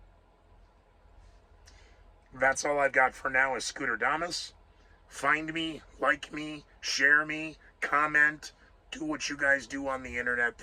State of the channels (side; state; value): both; identical; correlation 1.00